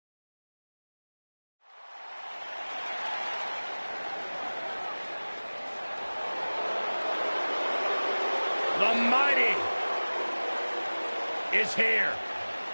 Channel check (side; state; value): both; inverted; correlation -1.00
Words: The Mighty is here.